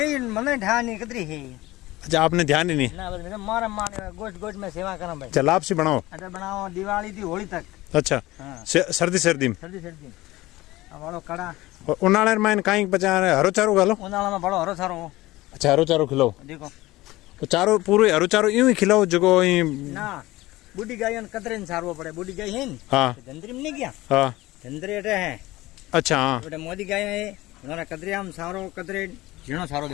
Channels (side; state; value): right; quieter; 18.6 dB